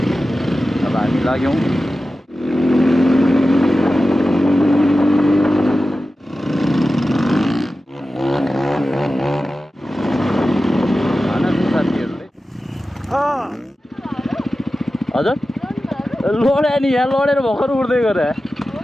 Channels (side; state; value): both; normal; correlation 0.94